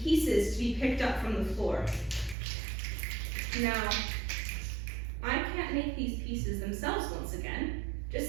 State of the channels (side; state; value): left; drops out; at 2.4 s